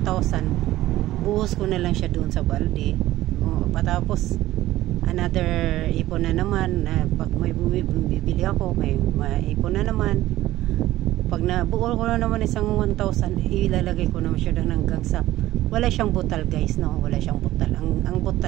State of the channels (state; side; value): quieter; left; 15.4 dB